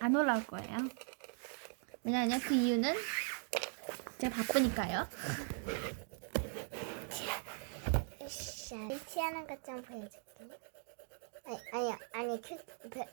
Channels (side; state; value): left; silent; 51 dB below the other